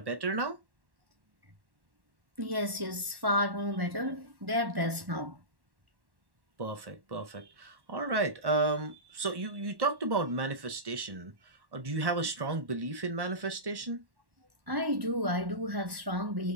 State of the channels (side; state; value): left; late; 1.1 ms